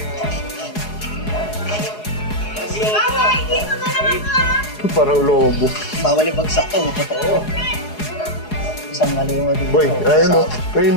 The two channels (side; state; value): right; late; 4.8 ms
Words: Parang lobo. Bawal yung bagsak to. Totoo. Isang maliwa dito. Boy, ayun o. Ayun